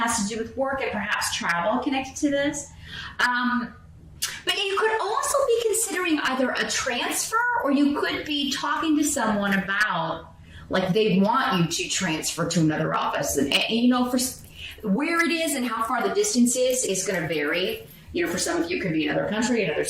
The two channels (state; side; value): identical; both; correlation 1.00